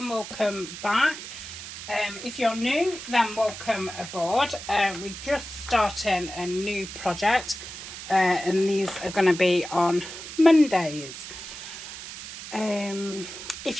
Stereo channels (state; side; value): noise; right; hiss, 11 dB below the sound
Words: welcome back. If you're new, then welcome aboard. We're just starting a new project and these are going to be on Mondays.